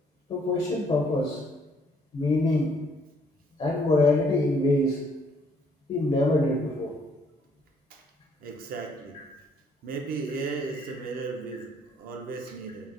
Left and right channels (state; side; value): normal; both; correlation 0.66